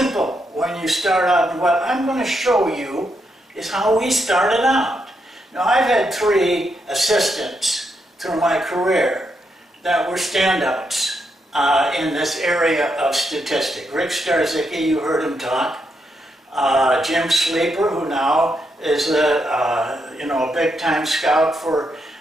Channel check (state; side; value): normal; both; correlation 0.80